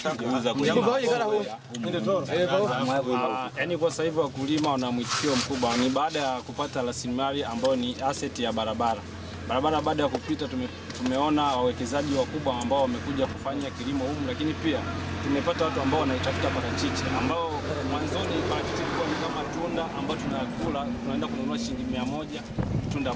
kuuza kwenye yaani kwa sasa hivi wakulima wana mwitikio mkubwa, ni baada ya kupata rasilimali ambayo ni asset ya barabara. Baada ya kupita tumeona wawekezaji wakubwa ambao wamekuja kufanya kilimo humu, lakini pia tumepata watu ambao wanaitafuta parachichi, ambao mwanzoni parachichi ilikuwa ni kama tunda ambao tunakula, tunaenda kununua shilingi 100 tunda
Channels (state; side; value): identical; both; correlation 1.00